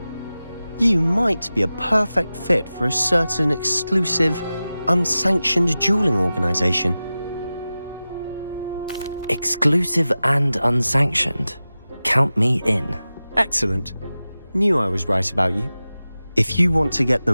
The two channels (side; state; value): both; inverted; correlation -0.95